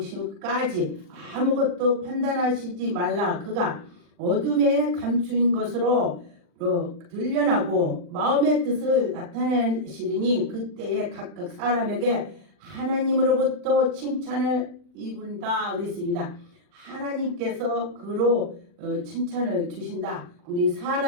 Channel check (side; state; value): left; late; 40 ms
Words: 아무것도 판단하시지 말라. 그가 어둠에 감추인 것으로 들려나고 마음의 뜻을 나타내시리니 그때에 각각 사람에게 하나님으로부터 칭찬을 입은다 그랬습니다. 하나님께서 그로 칭찬을 주신다. 우리